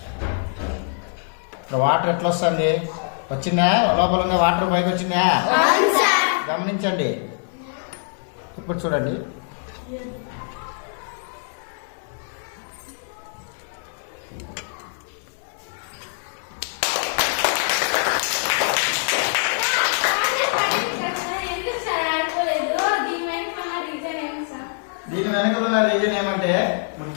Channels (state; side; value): silent; right; 60 dB below the other